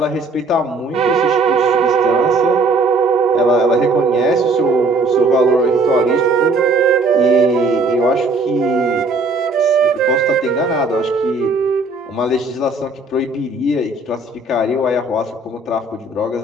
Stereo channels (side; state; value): left; quieter; 3.3 dB